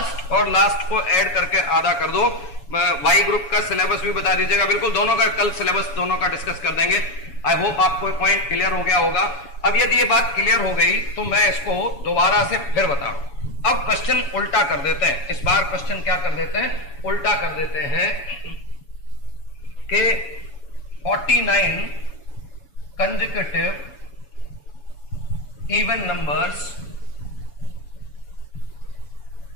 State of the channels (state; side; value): late; right; 7.1 ms